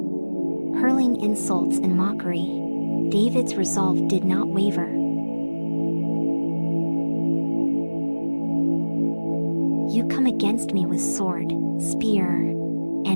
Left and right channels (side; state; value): both; inverted; correlation -1.00